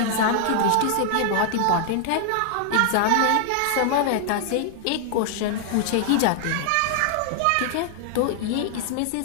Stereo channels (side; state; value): both; different; correlation 0.00